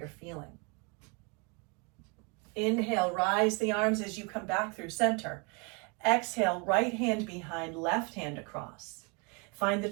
feeling. Inhale, rise the arms as you come back through center. Exhale, right hand behind, left hand across. Find the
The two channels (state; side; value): quieter; left; 32.1 dB